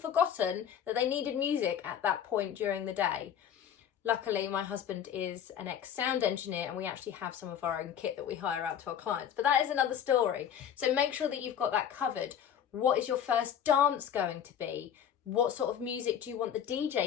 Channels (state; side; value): quieter; right; 9.0 dB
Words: that they needed music at that point during the day. Luckily, my husband is an ex-sound engineer and we actually have some of our own kit that we hire out to our clients, but that is another story. So make sure that you've got that covered. What is your first dance going to be? What sort of music do you want the